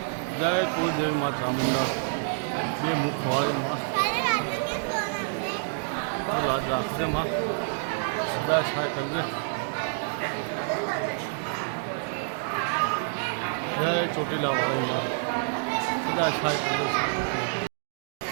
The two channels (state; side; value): silent; left; digital silence